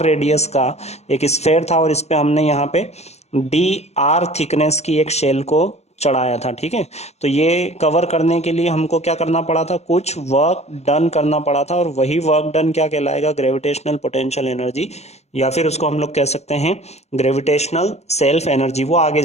रेडियस का एक स्फेयर था, और इस पे हमने यहाँ पे डी आर थिकनेस की एक शेल को चढ़ाया था। ठीक है, तो ये कवर करने के लिए हमको क्या करना पड़ा था, कुछ वर्क डन करना पड़ा था, और वही वर्क डन क्या कहलाएगा, ग्रेविटेशनल पोटेंशियल एनर्जी, या फिर उसको हम लोग कह सकते हैं ग्रेविटेशनल सेल्फ एनर्जी, वो आगे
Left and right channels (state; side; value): late; right; 0.32 ms